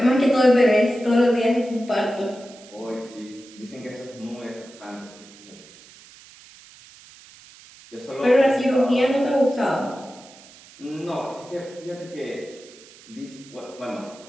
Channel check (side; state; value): right; noise; hiss, 22 dB below the sound